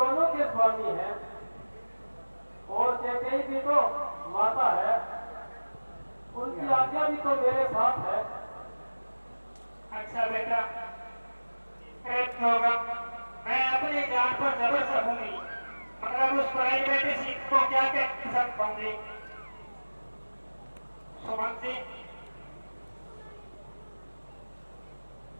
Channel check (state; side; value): inverted; both; correlation -1.00